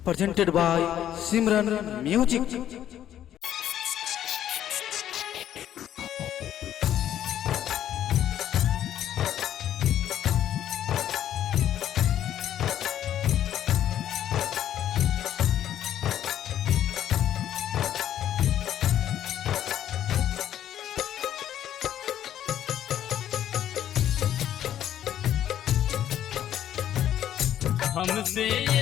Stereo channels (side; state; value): right; quieter; 11.1 dB